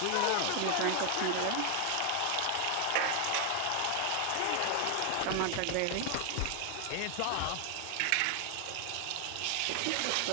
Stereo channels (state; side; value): different; both; correlation 0.00